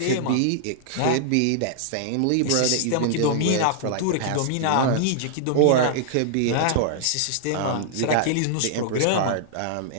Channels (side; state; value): both; different; correlation -0.01